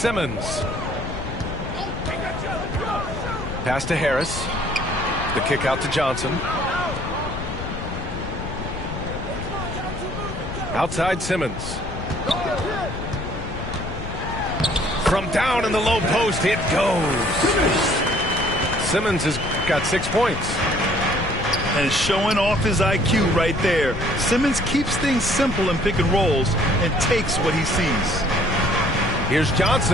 Pass to Harris. The kick out to Johnson. Outside Simmons. From down in the low post, it goes. Simmons has got 6 points. And showing off his IQ right there. Simmons keeps things simple in pick and rolls and takes what he sees. Here's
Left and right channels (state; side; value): noise; left; rumble, 7 dB below the sound